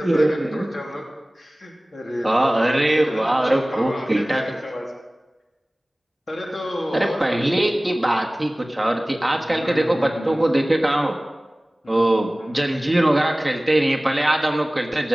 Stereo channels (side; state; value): both; normal; correlation 0.98